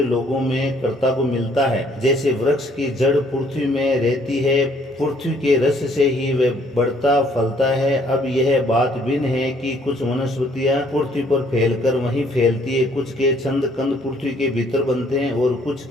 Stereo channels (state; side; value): normal; both; correlation 0.63